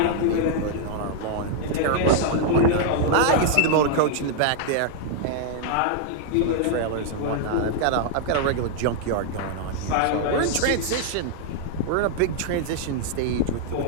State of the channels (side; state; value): both; different; correlation -0.01